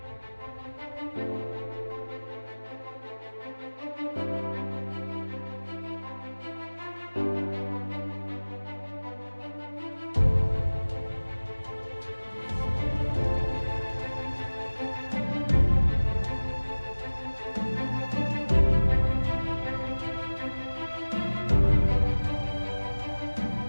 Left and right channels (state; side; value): inverted; both; correlation -1.00